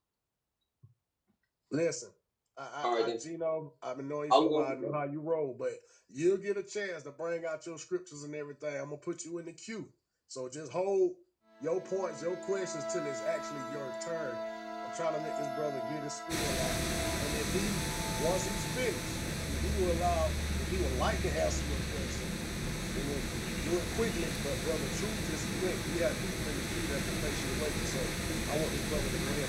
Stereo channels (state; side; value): identical; both; correlation 1.00